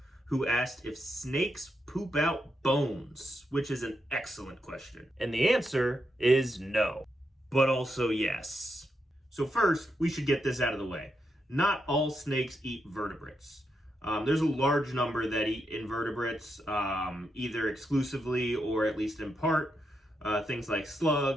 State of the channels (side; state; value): both; normal; correlation 0.83